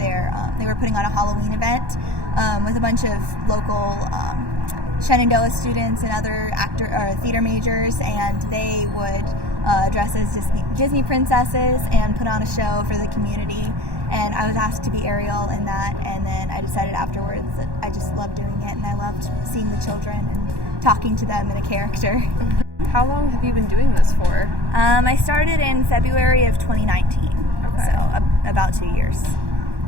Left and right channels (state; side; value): late; left; 1.2 ms